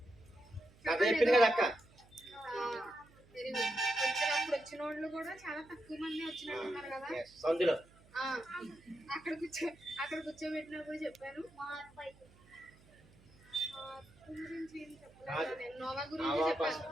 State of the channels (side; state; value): right; noise; hum, 26 dB below the sound